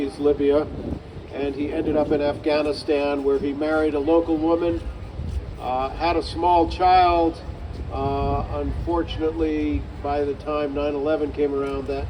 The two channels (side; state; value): both; identical; correlation 1.00